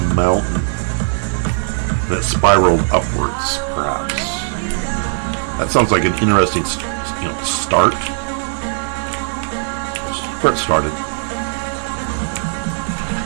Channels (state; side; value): silent; left; 67 dB below the other